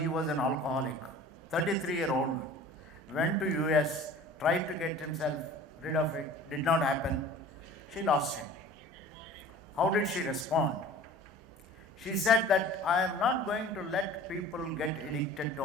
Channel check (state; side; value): normal; both; correlation 0.44